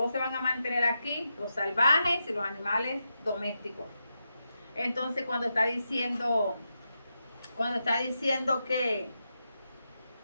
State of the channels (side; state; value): both; inverted; correlation -0.87